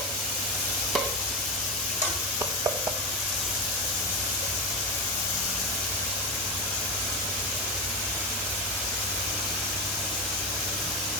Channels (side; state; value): both; normal; correlation 0.16